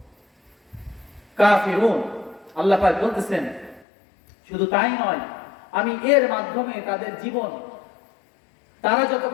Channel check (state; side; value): drops out; right; at 3.9 s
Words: কাফিরুন, আল্লাহ পাক বলতেছেন শুধু তাই নয়, আমি এর মাধ্যমে তাদের জীবন, তারা